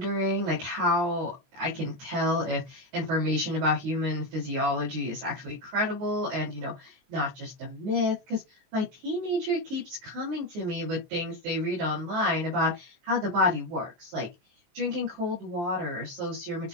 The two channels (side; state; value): left; late; 23 ms